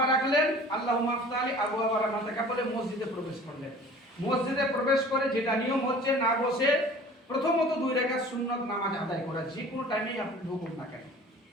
রাখলেন, আল্লাহুম্মা আফতালি আবওয়াবা রাহমাতিকা বলে মসজিদে প্রবেশ করলেন। মসজিদে প্রবেশ করে যেটা নিয়ম হচ্ছে, না বসে প্রথমত 2 রাকাত সুন্নত নামাজ আদায় করা, যে কোনো টাইমেই আপনি ঢুকুন না কেন,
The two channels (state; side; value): normal; both; correlation 0.46